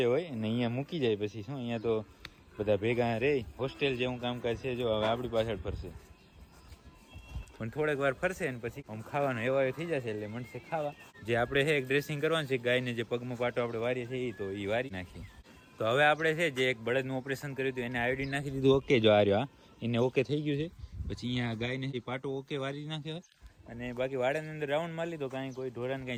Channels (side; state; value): both; identical; correlation 1.00